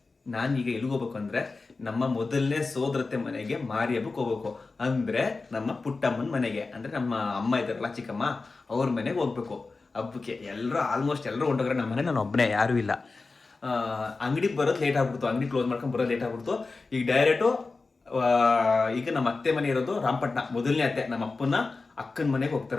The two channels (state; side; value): quieter; right; 3.9 dB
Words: ನಾನೀಗ ಎಲ್ಲಿಗೆ ಹೋಗ್ಬೇಕು ಅಂದರೆ ನಮ್ಮ ಮೊದಲನೇ ಸೋದರತೆ ಮನೆಗೆ ಮಾರಿ ಹಬ್ಬಕ್ಕೆ ಹೋಗ್ಬೇಕು. ಅಂದರೆ ನಮ್ಮ ಪುಟ್ಟಮ್ಮನ ಮನೆಗೆ, ಅಂದರೆ ನಮ್ಮ ಅಮ್ಮ ಇದ್ದಾರಲ್ಲ ಚಿಕ್ಕಮ್ಮ, ಅವ್ರ ಮನೆಗೆ ಹೋಗ್ಬೇಕು ಹಬ್ಬಕ್ಕೆ. ಆಲ್ಮೋಸ್ಟ್ ಎಲ್ಲರೂ ಹೊಂಟೋಗ್ರೆ. ನಮ್ಮ ಮನೆ ನಾನು ಒಬ್ಬನೇ, ಯಾರೂ ಇಲ್ಲ. ಅಂಗಡಿಗೆ ಬರೋದು ಲೇಟ್ ಆಗ್ಬಿಡ್ತು, ಅಂಗಡಿ ಕ್ಲೋಸ್ ಮಾಡ್ಕೊಂಡು ಬರೋದು ಲೇಟ್ ಆಗ್ಬಿಡ್ತು. ಈಗ ಡೈರೆಕ್ಟು ಈಗ ನಮ್ಮ ಅತ್ತೆ ಮನೆ ಇರೋದು ರಾಮಪಟ್ಟಣ, ಮೊದಲನೇ ಅತ್ತೆ ನಮ್ಮ ಅಪ್ಪನ ಅಕ್ಕನ ಮನೆಗೆ